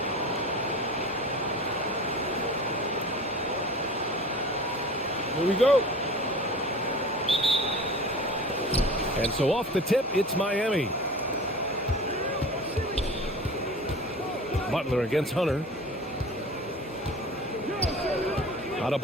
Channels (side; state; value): both; normal; correlation 0.38